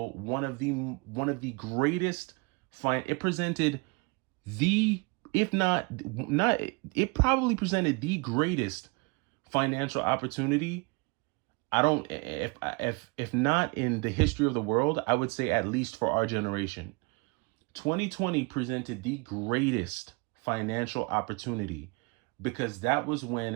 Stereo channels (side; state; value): left; quieter; 29.0 dB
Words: one of the greatest it presented the, if not it probably presented the greatest financial opportunity. I don't, if not in the history of the world, I would say at least for our generation. 2020 presented the greatest financial opportunity because that was